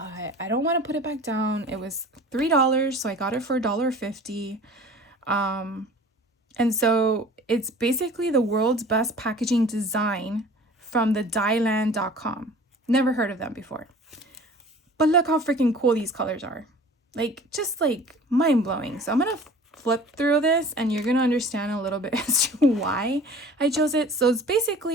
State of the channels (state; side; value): normal; both; correlation 0.45